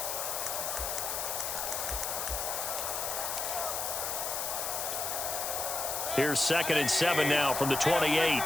Here's 2nd and 7 now from the 28.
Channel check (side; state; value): left; noise; hiss, 2 dB below the sound